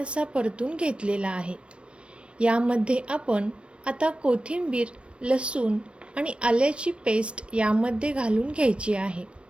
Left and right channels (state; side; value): late; left; 0.059 ms